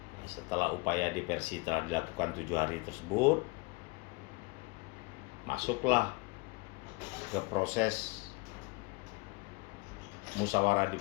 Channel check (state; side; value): quieter; right; 27.0 dB